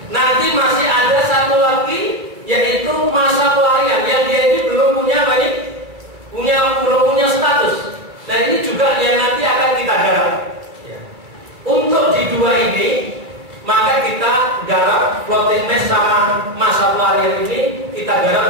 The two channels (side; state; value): left; late; 2.4 ms